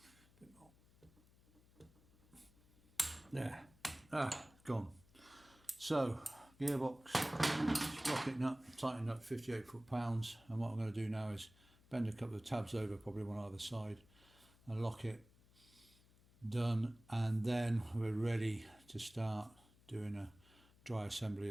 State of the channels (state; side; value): noise; left; hum, 27 dB below the sound